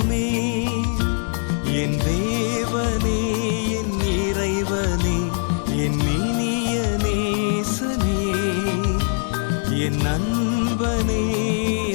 என் தேவனே என் இறைவனே என் இனிய நேசனே என் நண்பனே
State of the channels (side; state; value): right; silent; 64 dB below the other